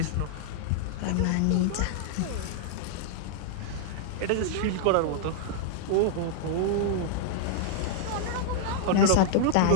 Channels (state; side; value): different; both; correlation -0.01